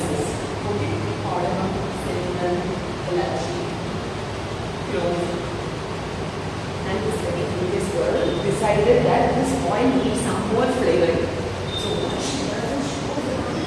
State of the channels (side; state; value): both; identical; correlation 1.00